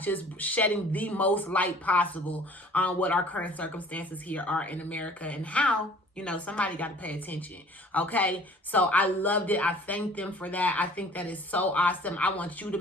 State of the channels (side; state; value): both; normal; correlation 0.50